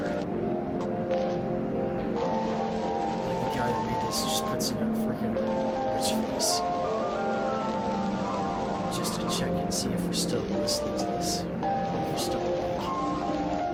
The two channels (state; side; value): identical; both; correlation 1.00